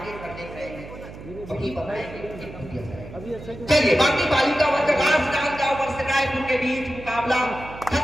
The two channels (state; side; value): noise; right; hum, 14 dB below the sound